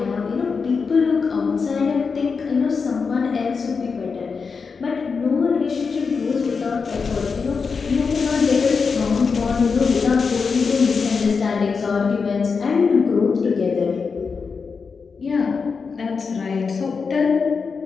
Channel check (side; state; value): right; quieter; 5.2 dB